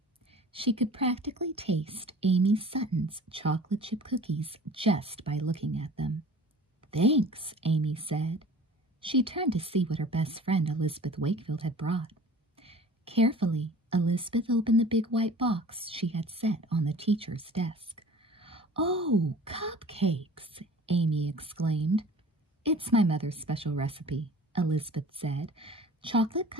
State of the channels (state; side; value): normal; both; correlation 0.44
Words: She could practically taste Amy Sutton's chocolate chip cookies just by looking at them. "Thanks," Amy said. She turned to see what her best friend Elizabeth Wakefield had brought. Carefully, Elizabeth opened the big white box she had set on the teacher's desk. "Oh, cupcakes!" Amy exclaimed. "It's my mother's special recipe," Elizabeth said. "Chocolate